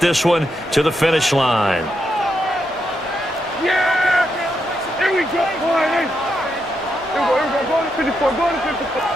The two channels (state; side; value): normal; both; correlation 0.82